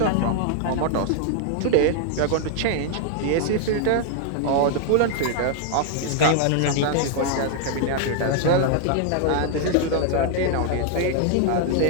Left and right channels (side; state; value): both; different; correlation 0.00